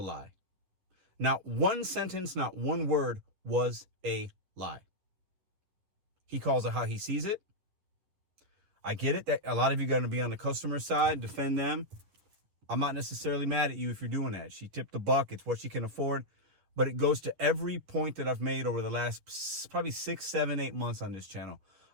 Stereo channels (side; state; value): left; late; 11 ms